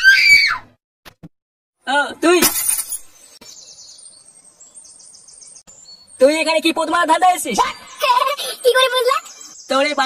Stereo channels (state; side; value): identical; both; correlation 1.00